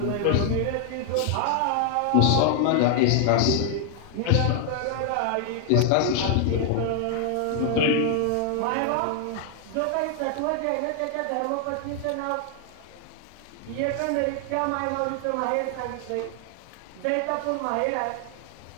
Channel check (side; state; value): both; different; correlation 0.00